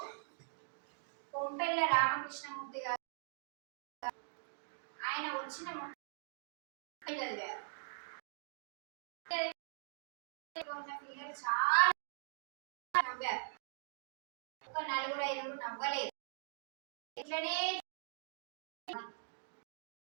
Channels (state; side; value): silent; left; digital silence